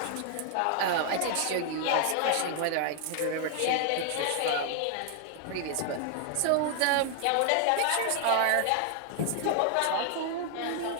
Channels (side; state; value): both; different; correlation 0.00